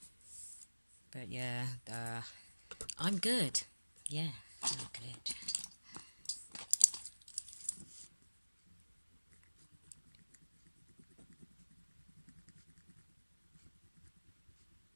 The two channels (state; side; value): inverted; both; correlation -1.00